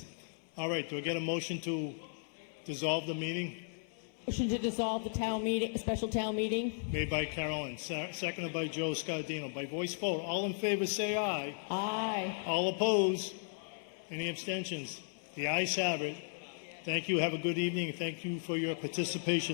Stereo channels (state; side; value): silent; right; 54 dB below the other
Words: All right, do I get a motion to dissolve the meeting? Motion to dissolve the town meeting, special town meeting. Made by Carolyn, seconded by Joe Scardino. By voice vote, all in favor say aye. Aye. All opposed? Any abstentions? The ayes have it. Thank you. Have a good evening. Thank you for your